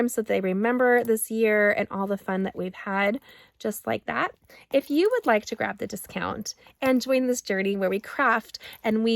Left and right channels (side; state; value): both; identical; correlation 1.00